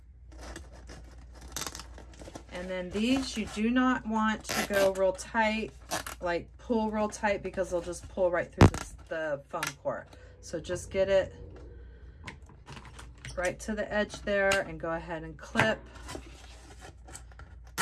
And then these, you do not want to go real tight, like pull real tight, because they'll just pull right through the foam core. So just get it right to the edge there and go ahead and clip.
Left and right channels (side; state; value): both; identical; correlation 1.00